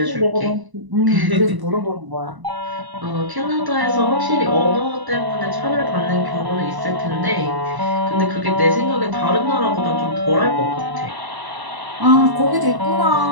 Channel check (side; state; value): left; late; 1.0 ms